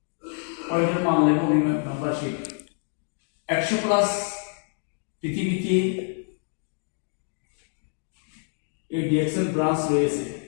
পয়েন্টের মান নেব। উনি মেম্বারশিপ 100 প্লাস পৃথিবীতে এই ডিএক্সএন ব্রাঞ্চ রয়েছে।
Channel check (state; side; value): silent; right; 55 dB below the other